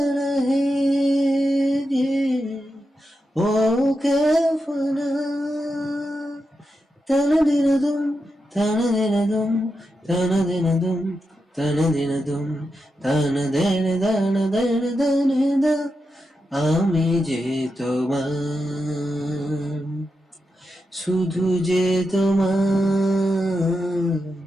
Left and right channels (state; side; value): normal; both; correlation 0.87